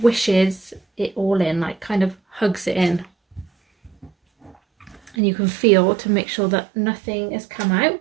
it all in, like kind of hugs it in, and you can feel to make sure that nothing has come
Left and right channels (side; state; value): left; drops out; at 5.2 s